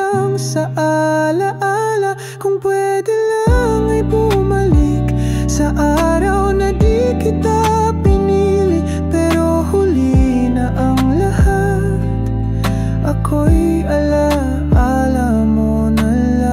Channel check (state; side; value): identical; both; correlation 1.00